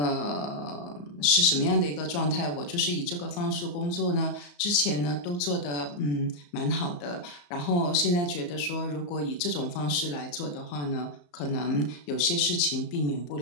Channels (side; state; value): right; late; 34 ms